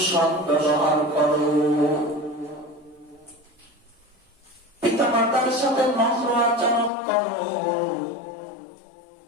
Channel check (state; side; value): drops out; right; at 6.9 s